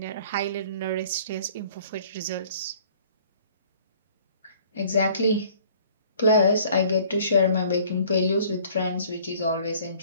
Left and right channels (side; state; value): both; inverted; correlation -0.54